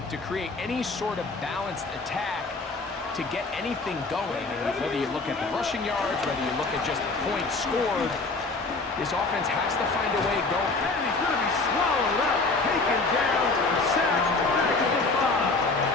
to create any sort of balanced attack to get anything going. And whether you look at the rushing yards, whether you look at just the points scored, this offense has to find a way going. And he's going to be swallowed up, taken down, sacked back at the 5.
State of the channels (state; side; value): quieter; right; 3.7 dB